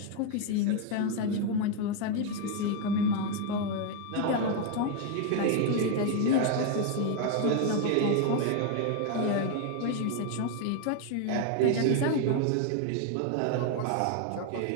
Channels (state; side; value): different; both; correlation 0.01